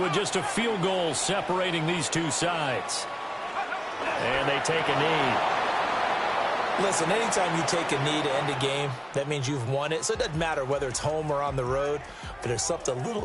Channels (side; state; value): both; identical; correlation 1.00